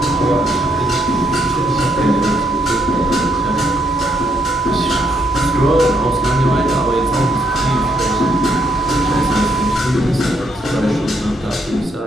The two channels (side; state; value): both; normal; correlation 0.74